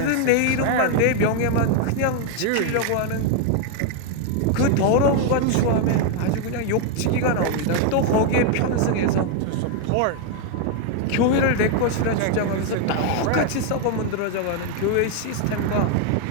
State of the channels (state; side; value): different; both; correlation 0.01